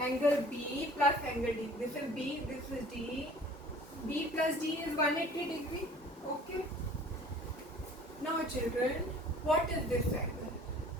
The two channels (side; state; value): both; normal; correlation 0.49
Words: B plus angle D. This is B, this is D. B plus D is 180 degree. Okay. Now children, what is this angle?